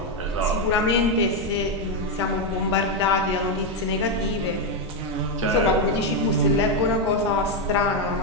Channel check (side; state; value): both; normal; correlation 0.05